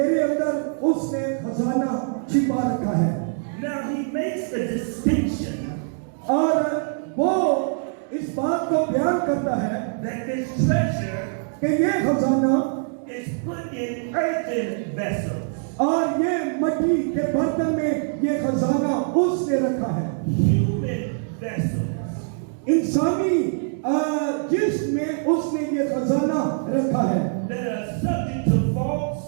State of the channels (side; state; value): left; silent; digital silence